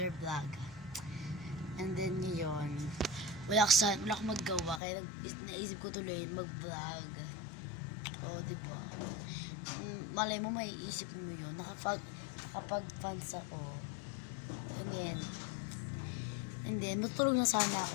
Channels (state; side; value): drops out; right; at 4.8 s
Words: vlog. And then yun, wala akong maggawa, kaya naisip ko tuloy mag-vlog. O, diba? Malay mo, may isip mo yun. Nakapag-fans ako. And then, matulog na sana